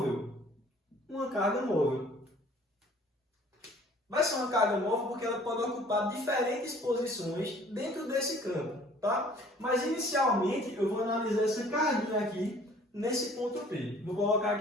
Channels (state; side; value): normal; both; correlation 0.53